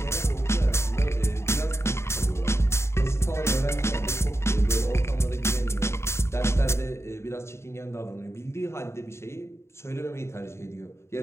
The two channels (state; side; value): late; right; 0.13 ms